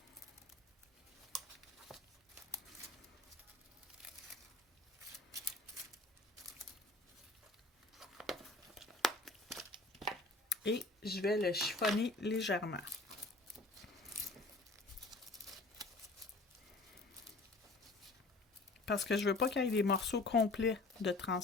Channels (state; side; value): quieter; right; 3.1 dB